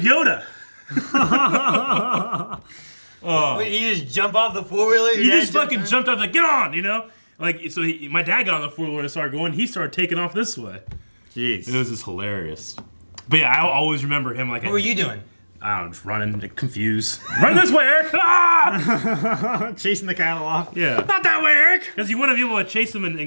Yoda. Wait, you just jump off the 4-wheeler? He just fucking jumped off, like, get on, you know? Like, so my dad got on the 4-wheeler and started going. He started taking off this way. Jeez. It was just hilarious. But yeah, I always remember him like. What were you doing? I don't know, just running, like, confused. Run this way, Eric! Ah! Chasing the cattle off. Yeah. Not that way, Eric! Because you want to be able to chase them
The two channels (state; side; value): inverted; both; correlation -1.00